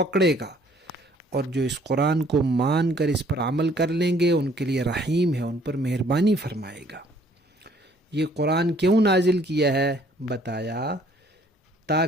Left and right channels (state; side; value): normal; both; correlation 0.60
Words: گا، اور جو اس قرآن کو مان کر اس پر عمل کر لیں گے ان کے لیے رحیم ہے، ان پر مہربانی فرمائے گا۔ یہ قرآن کیوں نازل کیا ہے؟ بتایا